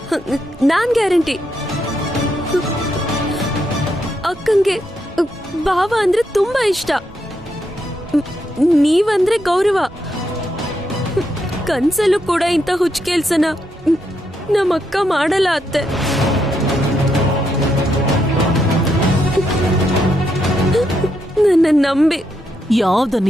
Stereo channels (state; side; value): normal; both; correlation 0.80